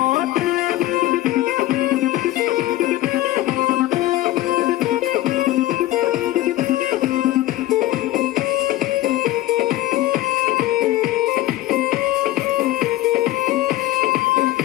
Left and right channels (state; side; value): quieter; right; 15.8 dB